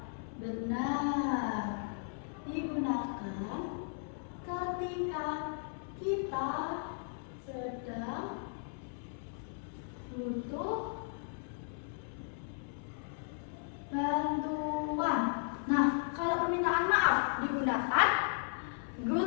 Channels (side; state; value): right; silent; 54 dB below the other